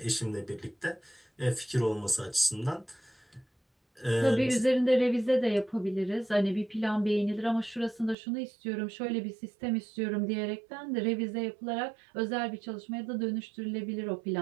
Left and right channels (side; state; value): left; drops out; at 8.2 s